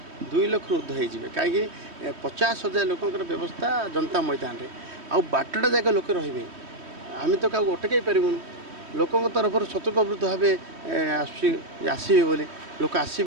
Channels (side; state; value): left; late; 3.1 ms